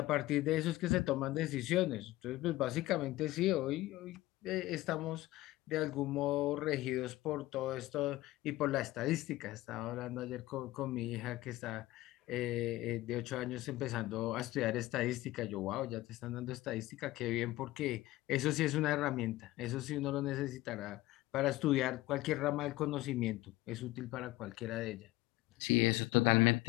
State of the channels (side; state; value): right; quieter; 17.7 dB